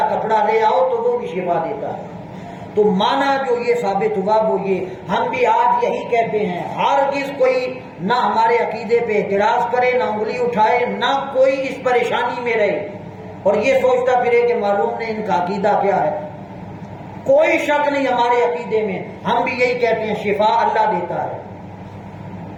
کپڑا لے آؤ تو وہ بھی شفا دیتا ہے، تو مانا جو یہ ثابت ہوا وہ یہ ہم بھی آج یہی کہتے ہیں، ہرگز کوئی نہ ہمارے عقیدے پہ اعتراض کرے، نہ انگلی اٹھائے، نہ کوئی اس پریشانی میں رہے اور یہ سوچتا پھرے کہ معلوم نہیں ان کا عقیدہ کیا ہے، کوئی شک نہیں ہمارے عقیدے میں، ہم بھی یہی کہتے ہیں شفا اللہ دیتا ہے،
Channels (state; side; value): identical; both; correlation 1.00